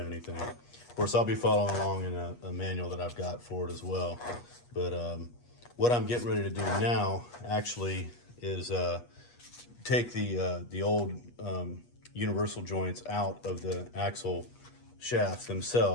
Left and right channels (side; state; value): right; late; 8.3 ms